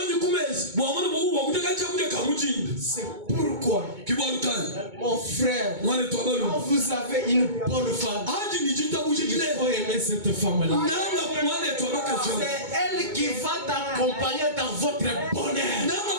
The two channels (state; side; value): late; left; 2.2 ms